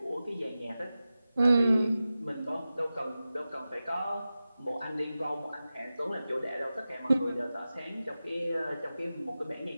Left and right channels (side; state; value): both; inverted; correlation -0.95